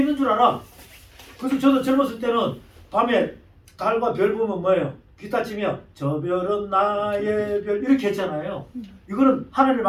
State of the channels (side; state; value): both; identical; correlation 1.00